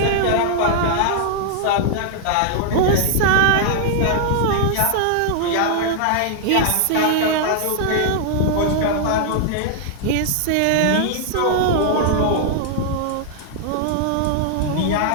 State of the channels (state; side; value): different; both; correlation -0.01